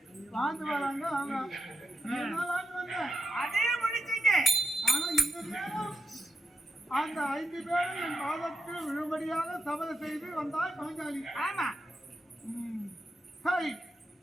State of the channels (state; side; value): normal; both; correlation 0.85